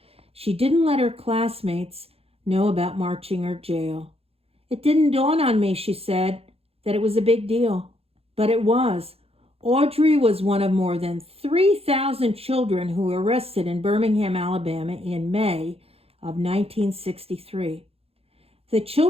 She didn't let her classmates know about marching or jail. "It didn't dawn on me," she said, "that it was a big deal." But it was. Audrey was one of more than 3,000 children who were arrested in Birmingham, Alabama in May of 1963. The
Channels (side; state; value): left; late; 0.29 ms